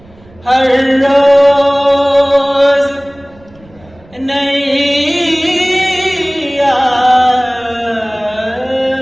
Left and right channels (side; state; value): right; noise; rumble, 27 dB below the sound